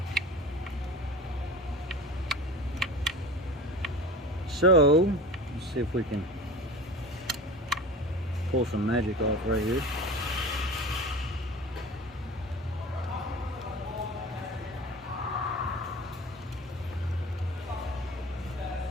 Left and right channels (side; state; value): both; normal; correlation 0.36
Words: So, let's see if we can pull some magic off right here.